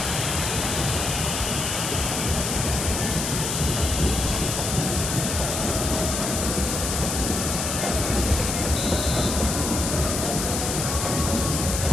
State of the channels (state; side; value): noise; left; hiss, 2 dB below the sound